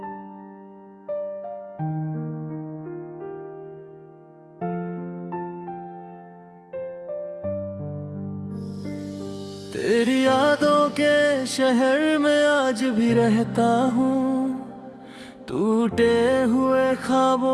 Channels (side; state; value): both; identical; correlation 1.00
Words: तेरी यादों के शहर में आज भी रहता हूँ, टूटे हुए